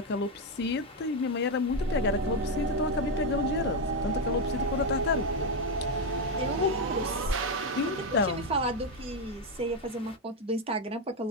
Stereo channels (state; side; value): normal; both; correlation 0.06